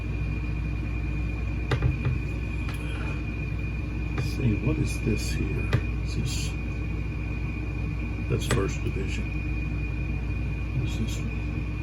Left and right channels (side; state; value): both; identical; correlation 1.00